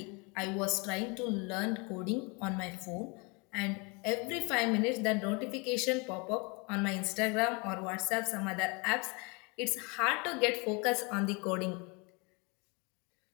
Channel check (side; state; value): right; quieter; 30.2 dB